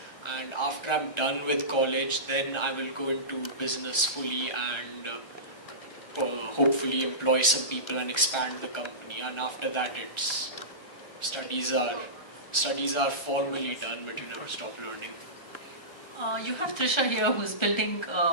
And after I'm done with college, then I will go into business fully and hopefully employ some people and expand the company. And after that, it's studies are formally done, but you never stop learning. You have Trisha here who's building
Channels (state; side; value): late; right; 1.4 ms